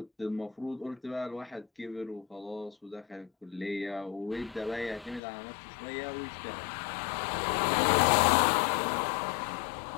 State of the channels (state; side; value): drops out; right; at 5.2 s